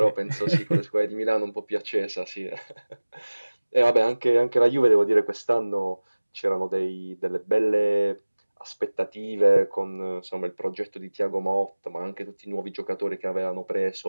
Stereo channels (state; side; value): inverted; both; correlation -1.00